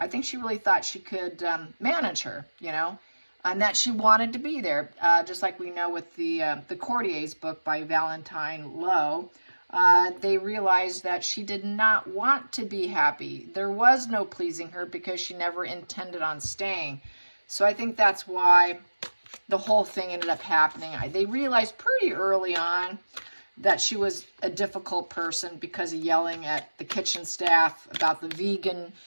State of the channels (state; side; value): inverted; both; correlation -1.00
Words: think she really thought she could manage her, you know, and that she wanted to be there. Just like we know with the Courtiers book by Valentine Lowe. They realized that she did not want to be happy. There was no pleasing her because she never intended on staying. So I think that's why the whole thing ended up happening. They realized pretty early on that she was a difficult person because of yelling at the kitchen staff about the vegan